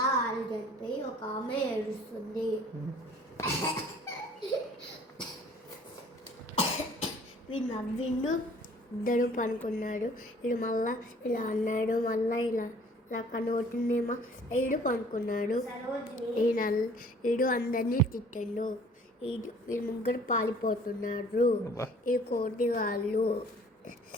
ఆడు చనిపోయి ఒక ఆమె ఏడుస్తుంది. వీడు నవ్విండు, ఇద్దరు పనుకున్నాడు. వీడు మళ్ళా ఇలా అన్నాడు, మళ్ళా ఇలా ఇలా కనబడుతుందేమో. వీడు పనుకున్నాడు. వీడు అందరినీ తిట్టిండు. వీళ్ళు ముగ్గురు పాలిపోతున్నారు. ఈ కోటి వాళ్ళు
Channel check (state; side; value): normal; both; correlation 0.53